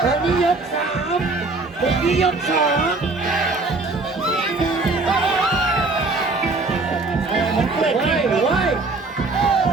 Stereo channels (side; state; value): left; quieter; 3.5 dB